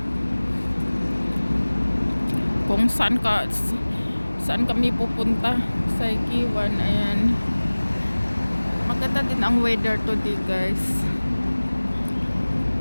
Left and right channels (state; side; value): inverted; both; correlation -1.00